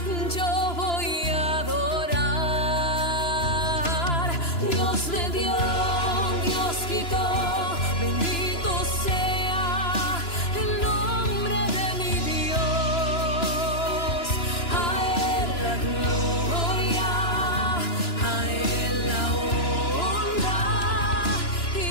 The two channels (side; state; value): right; late; 2.9 ms